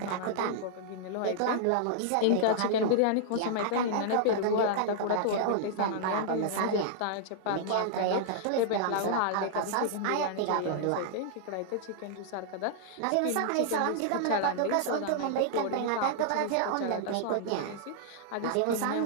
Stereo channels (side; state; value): both; different; correlation -0.01